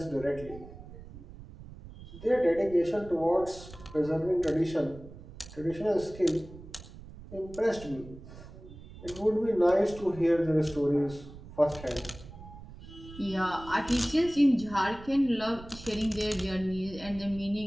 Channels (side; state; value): right; noise; rumble, 16 dB below the sound